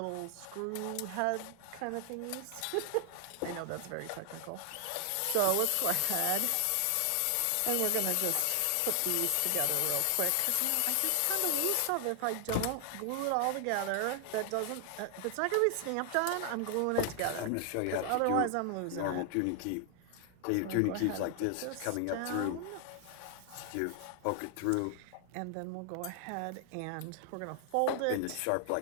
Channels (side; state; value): both; different; correlation 0.00